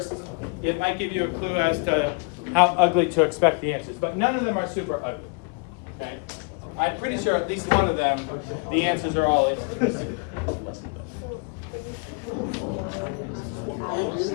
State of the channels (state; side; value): quieter; right; 33.5 dB